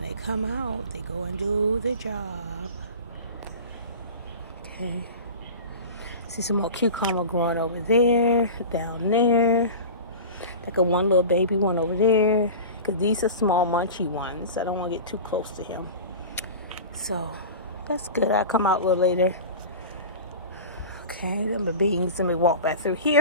they come out, they go and do their job. Okay. See some more cucumber growing over there. Down there. Like a one little baby one over there. Because these are small munchy ones. I don't want to get too close to him. So, that's good. I'll come out a little later. Okay, them are beans. Let me walk back through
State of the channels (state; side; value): inverted; both; correlation -0.33